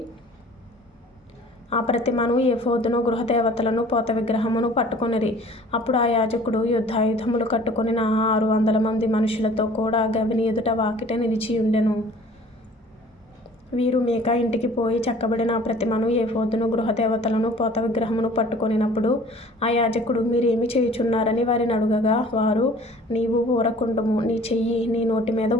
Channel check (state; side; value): normal; both; correlation 0.49